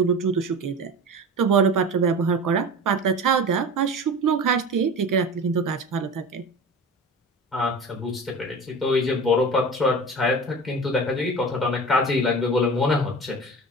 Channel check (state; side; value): normal; both; correlation 0.33